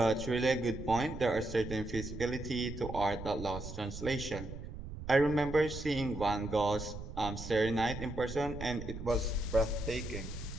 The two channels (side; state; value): right; noise; rumble, 9 dB below the sound